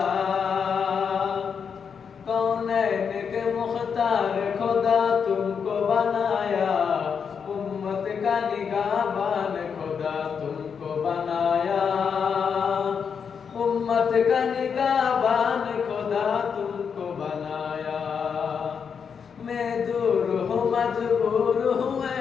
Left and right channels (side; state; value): right; quieter; 6.6 dB